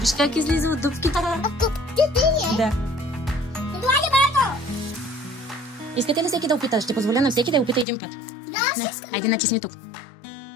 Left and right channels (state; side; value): drops out; right; at 7.9 s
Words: как излиза от дупките. Да. Искате ли всеки да опита? Ще позволя на всеки да опита един път. Да, айде натисни тук.